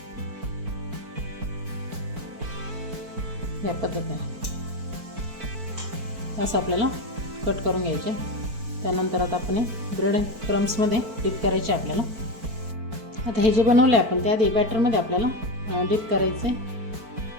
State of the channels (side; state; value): left; late; 4.5 ms